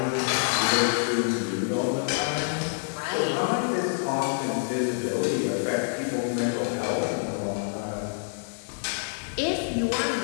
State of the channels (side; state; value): right; silent; digital silence